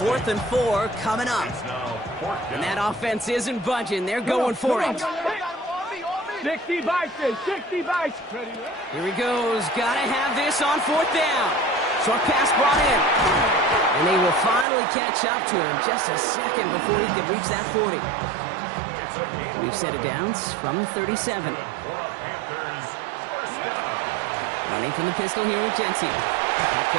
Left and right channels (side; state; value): left; drops out; at 14.7 s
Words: 4th and 4 coming up. And that offense isn't budging. They're going for it. 60 Bison, 60 Bison. Here he goes. Got to have this on 4th down. Short pass brought in. And they will finally catch up to him just a second before he can reach that 40. We've set it downs from the 37. Running from the pistol here with Genty. That